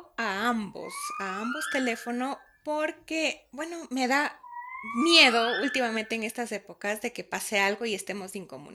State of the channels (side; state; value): both; identical; correlation 1.00